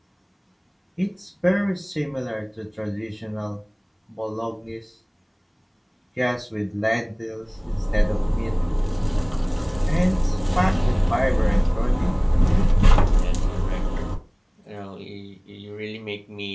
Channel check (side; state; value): both; identical; correlation 1.00